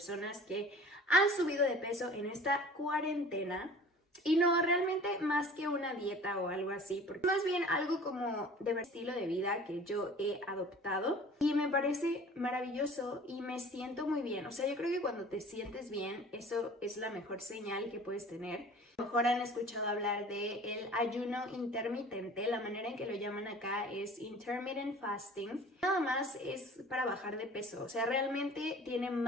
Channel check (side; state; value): both; normal; correlation 0.45